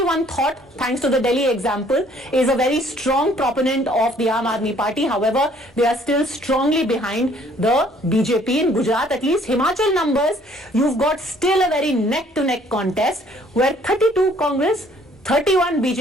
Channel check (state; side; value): normal; both; correlation 0.60